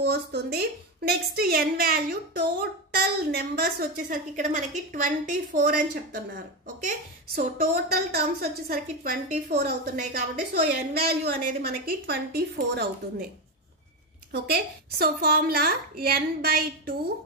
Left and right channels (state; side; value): normal; both; correlation 0.14